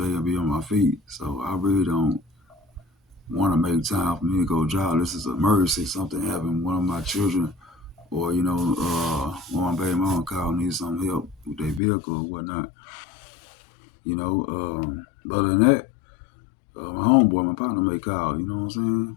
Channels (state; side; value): drops out; right; at 11.8 s